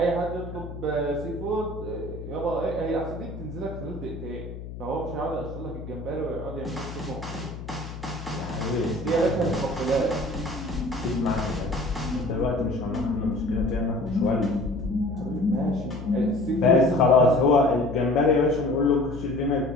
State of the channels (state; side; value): noise; left; hum, 11 dB below the sound